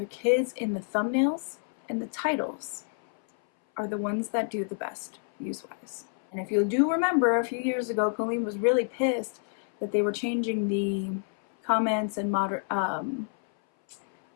kids in the thumbnails and the titles are the ones that do the best views-wise. And if you do remember, a few years ago, Colleen was really pissed that they were changing the comments and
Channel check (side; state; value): right; silent; 58 dB below the other